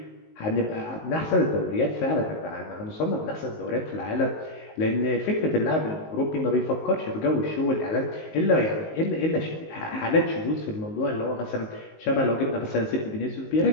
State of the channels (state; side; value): late; right; 19 ms